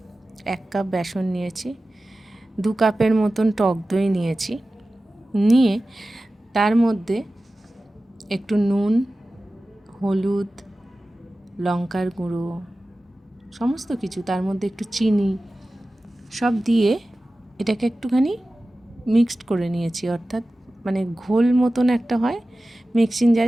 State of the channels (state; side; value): normal; both; correlation 0.95